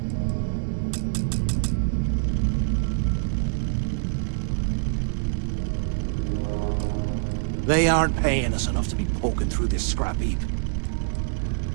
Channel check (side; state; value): left; silent; digital silence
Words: They aren't paying us enough to be poking through this scrap heap.